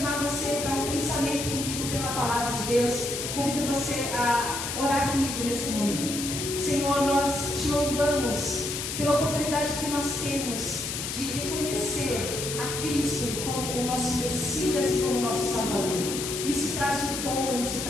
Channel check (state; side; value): noise; left; hiss, 4 dB below the sound